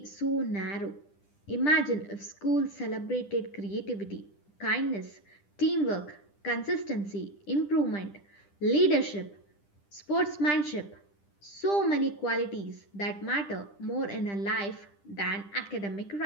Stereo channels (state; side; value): late; right; 10 ms